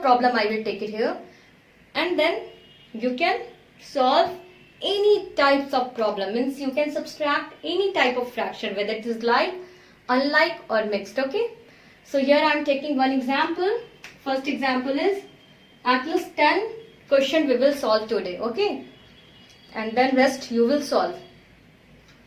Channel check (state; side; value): identical; both; correlation 1.00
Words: problem I will take it here. And then you can solve any types of problem, means you can subtract any type of fraction, whether it is like, unlike or mixed, okay. So here I am taking one example. First example is at least 10 question we will solve today, okay, and then rest you will solve.